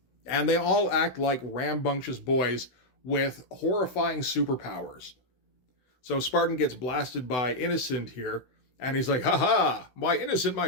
And they all act like rambunctious boys with horrifying superpowers. So Spartan gets blasted by Innocent here, and he's like, haha, why Innocent, my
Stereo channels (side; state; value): right; late; 16 ms